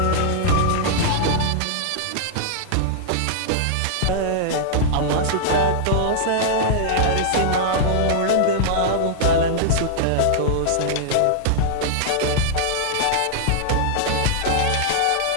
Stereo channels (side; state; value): both; different; correlation -0.01